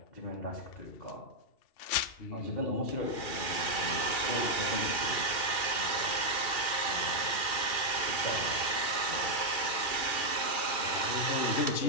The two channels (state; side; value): late; right; 2.4 ms